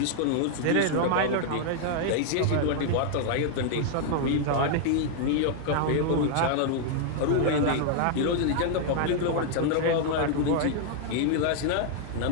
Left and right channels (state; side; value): different; both; correlation 0.00